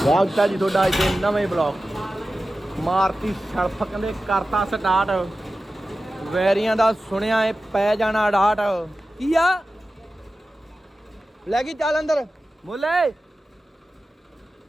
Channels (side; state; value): both; normal; correlation 0.94